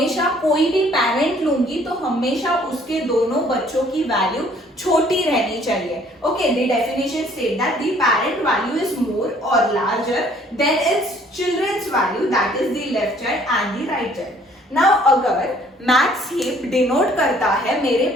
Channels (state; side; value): normal; both; correlation 0.59